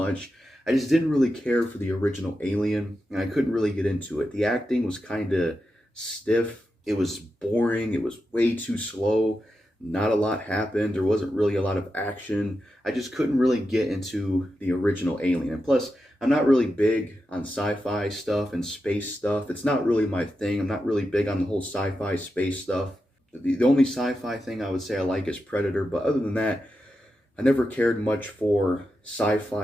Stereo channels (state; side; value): normal; both; correlation 0.89